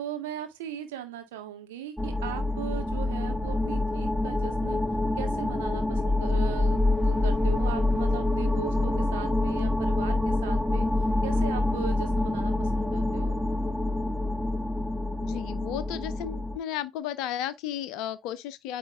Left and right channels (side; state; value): both; normal; correlation 0.86